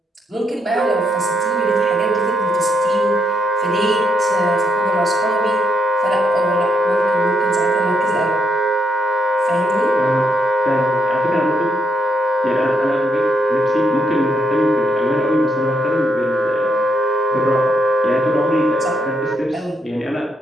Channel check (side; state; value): both; normal; correlation 0.76